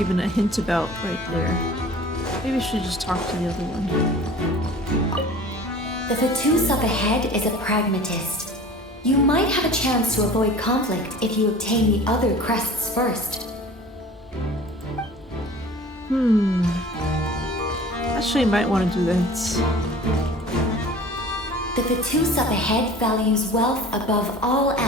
a hint about right there? Maybe I should just talk to the other one. The Fatus up ahead is a pragmatist. You might have a chance to avoid conflict if you obtain the other crests first. Actually, I might want to do that. The Fatus up ahead values wealth above all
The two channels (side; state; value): both; normal; correlation 0.43